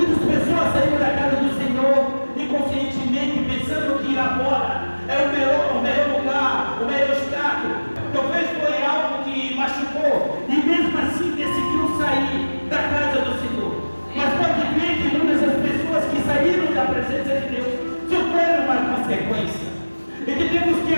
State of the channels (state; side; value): inverted; both; correlation -1.00